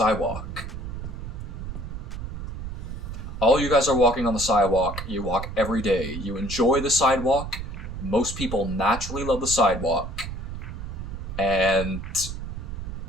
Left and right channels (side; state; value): right; noise; rumble, 7 dB below the sound